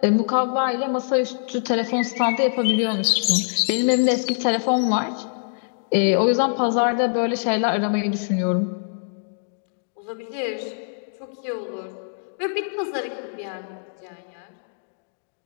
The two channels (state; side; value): silent; right; digital silence